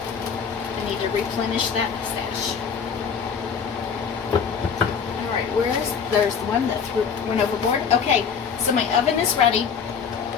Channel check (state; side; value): quieter; right; 6.6 dB